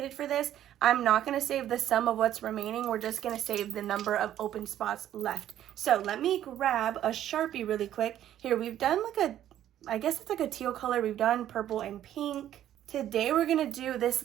for this, I'm not going to save the sum of what's remaining. We're just going to save the number of open spots left. So let me grab a Sharpie really quick. Here, we've done like I guess it's like a teal color. We've done purple and pink. Today we're going to do this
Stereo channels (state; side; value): quieter; left; 11.7 dB